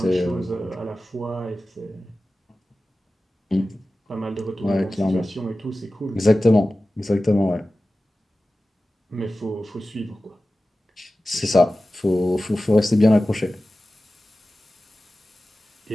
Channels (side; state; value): both; normal; correlation 0.95